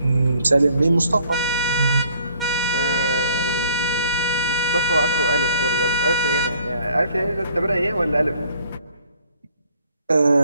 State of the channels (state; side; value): inverted; both; correlation -0.59